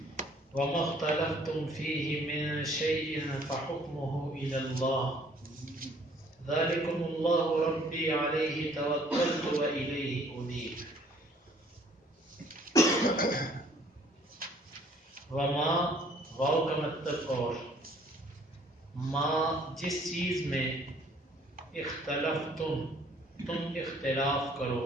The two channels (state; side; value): normal; both; correlation 0.59